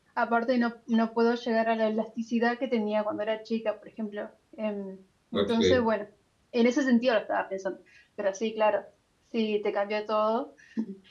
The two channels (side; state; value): both; identical; correlation 1.00